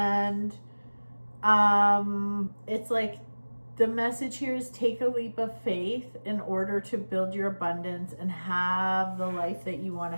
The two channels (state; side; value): inverted; both; correlation -1.00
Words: it's like the message here is take a leap of faith in order to build your abundance and have the life that you want to